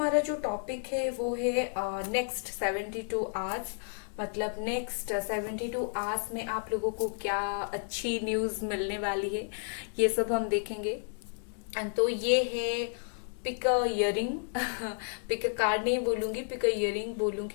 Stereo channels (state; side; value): silent; right; 57 dB below the other